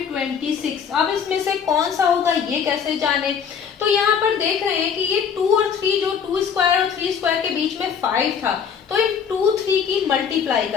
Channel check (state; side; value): quieter; right; 7.1 dB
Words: 26। अब इसमें से कौन सा होगा ये कैसे जाने? तो यहाँ पर देख रहे हैं कि ये 2 और 3, जो 2 स्क्वायर और 3 स्क्वायर के बीच में 5 था, तो इन 2 3 की मल्टीप्लाई